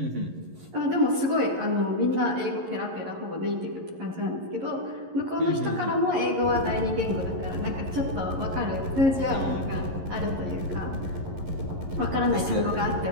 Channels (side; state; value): left; late; 11 ms